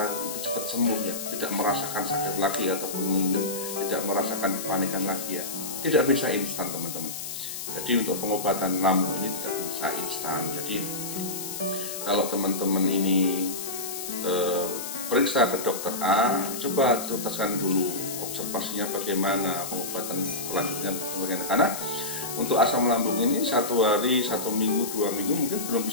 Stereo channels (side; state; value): left; noise; hiss, 7 dB below the sound